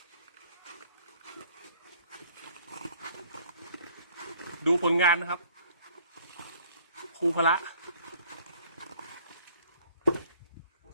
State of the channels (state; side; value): inverted; both; correlation -0.58